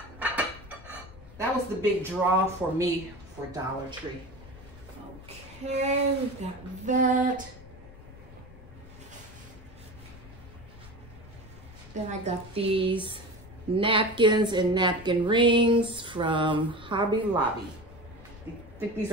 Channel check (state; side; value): noise; left; rumble, 19 dB below the sound